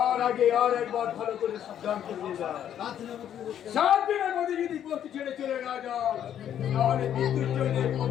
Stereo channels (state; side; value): quieter; right; 10.0 dB